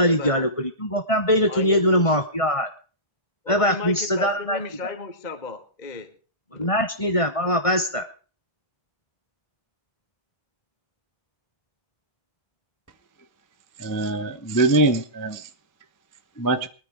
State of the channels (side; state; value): right; late; 1.5 ms